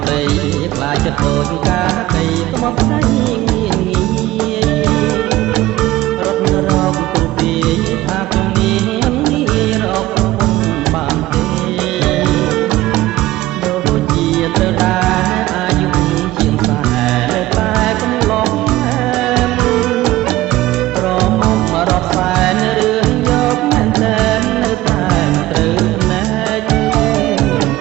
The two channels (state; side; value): quieter; left; 16.7 dB